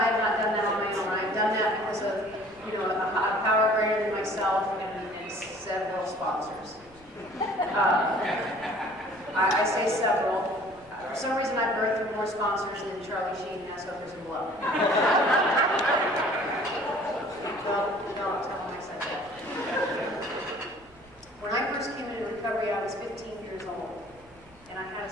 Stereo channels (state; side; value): noise; right; rumble, 27 dB below the sound